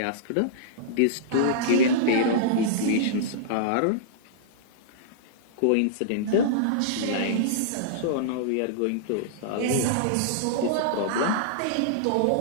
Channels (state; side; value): different; both; correlation -0.02